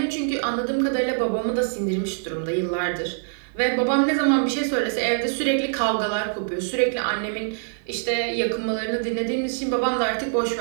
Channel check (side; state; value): left; silent; 61 dB below the other